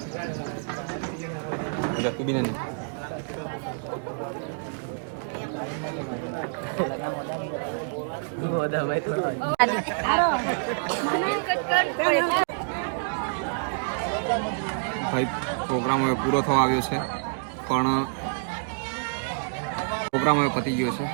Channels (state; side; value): silent; left; digital silence